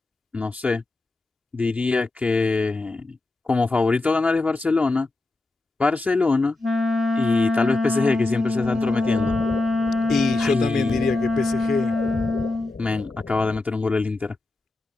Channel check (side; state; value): right; quieter; 3.1 dB